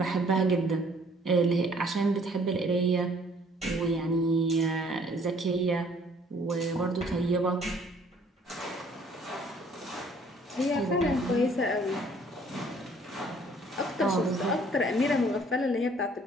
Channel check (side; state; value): both; normal; correlation 0.59